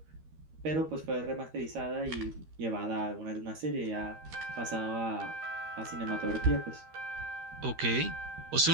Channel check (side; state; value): left; late; 13 ms